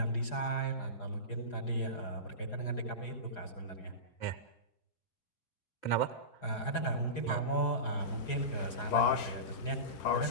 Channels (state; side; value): late; right; 4.9 ms